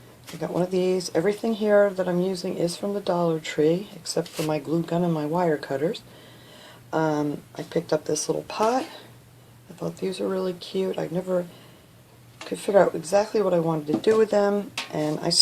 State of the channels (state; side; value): identical; both; correlation 1.00